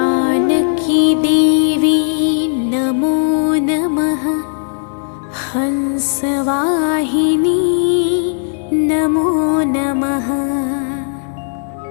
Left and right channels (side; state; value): right; silent; 60 dB below the other